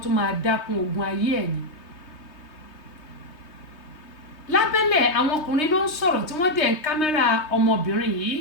tún máa dákun ogun ayé ẹ̀ ni. Lábẹ́lẹ̀ àwọn ọkùnrin ló ń sọ̀rọ̀ tí wọ́n dẹ̀ ń kámẹ́rà ọmọbìnrin yìí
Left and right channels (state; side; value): late; right; 3.2 ms